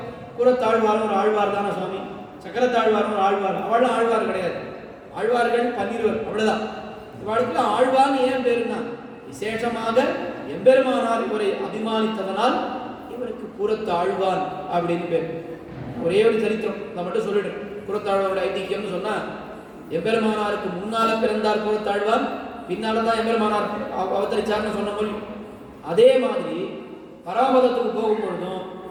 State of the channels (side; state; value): both; identical; correlation 1.00